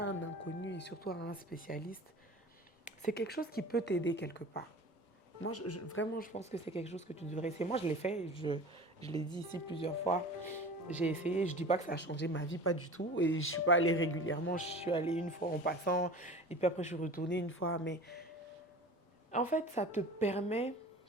un inconnu et surtout à un spécialiste, c'est quelque chose qui peut t'aider quelque part. Moi, vraiment, je pense que c'est quelque chose que tu devrais essayer. Moi, je l'ai fait, je l'ai dit ici plusieurs fois. J'ai essayé, je ne dis pas que ça a changé ma vie, pas du tout. Et je ne suis pas allée régulièrement, je suis allée une fois en passant. Et puis après, je suis retournée une fois. Mais en fait, ça te permet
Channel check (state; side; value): normal; both; correlation 0.38